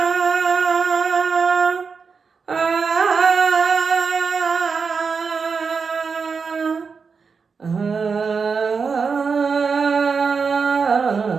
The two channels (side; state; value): left; quieter; 5.3 dB